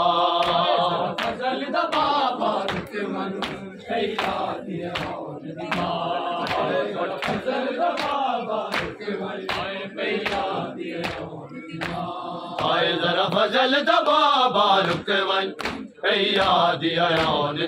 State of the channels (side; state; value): both; identical; correlation 1.00